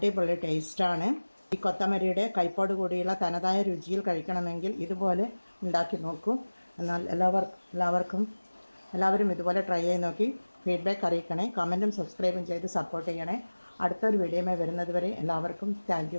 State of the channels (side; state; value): both; inverted; correlation -1.00